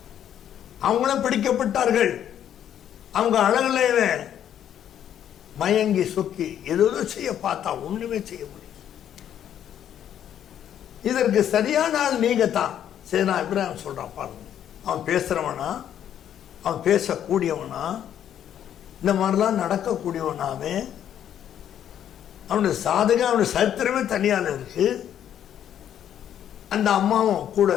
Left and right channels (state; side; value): quieter; right; 10.1 dB